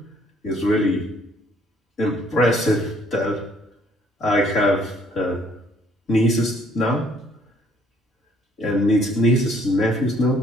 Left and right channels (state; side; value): normal; both; correlation 0.63